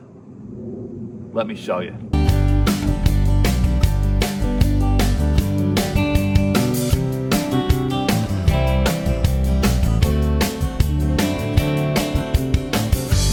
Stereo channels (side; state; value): both; identical; correlation 1.00